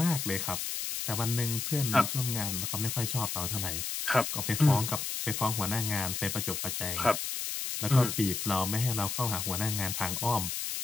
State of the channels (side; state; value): left; noise; hiss, 3 dB below the sound